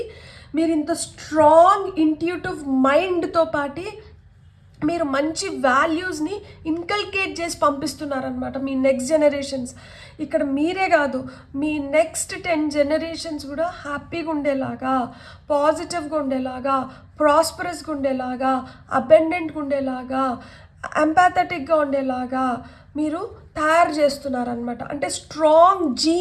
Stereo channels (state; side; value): identical; both; correlation 1.00